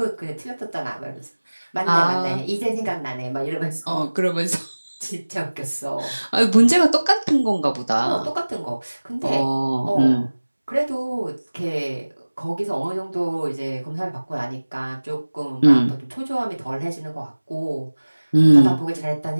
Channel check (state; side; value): inverted; both; correlation -1.00